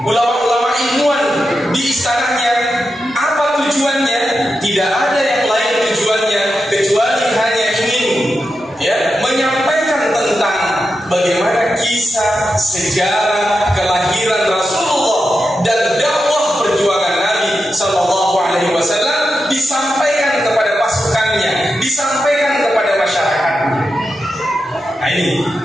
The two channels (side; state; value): both; normal; correlation 0.88